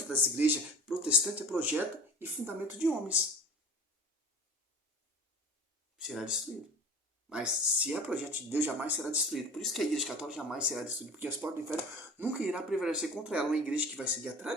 das igrejas protestantes é projeto e fundamento de homens. Será destruído. Mas se é projeto de Deus, jamais será destruído. Por isso que a igreja católica jamais será destruída, porque as portas do inferno nunca irá prevalecer contra ela. Uma igreja que vai seguir a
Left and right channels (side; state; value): both; normal; correlation 0.39